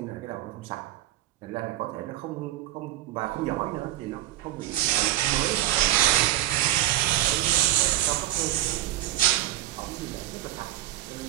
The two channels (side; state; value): left; quieter; 14.8 dB